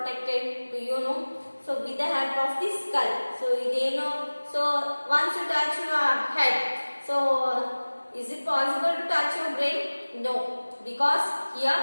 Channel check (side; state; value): both; inverted; correlation -1.00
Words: do you know? So with the help of the skull. So they know. So once you touch your head, so is it possible to touch your brain? No, because here